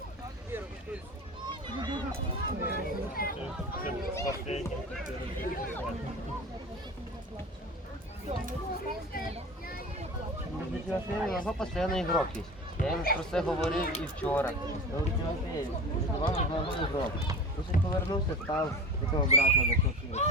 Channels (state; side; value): normal; both; correlation 0.33